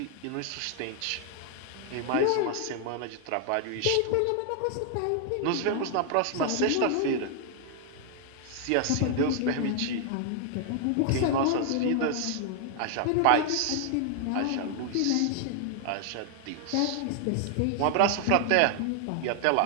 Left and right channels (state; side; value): different; both; correlation 0.00